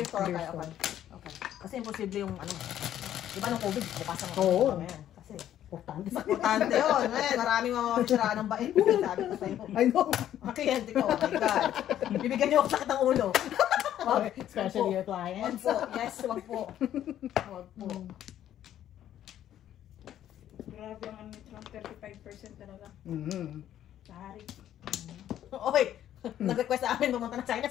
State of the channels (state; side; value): quieter; right; 11.4 dB